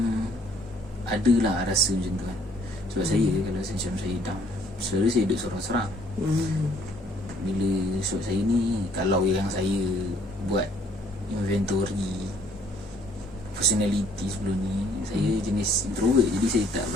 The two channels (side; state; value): both; normal; correlation 0.62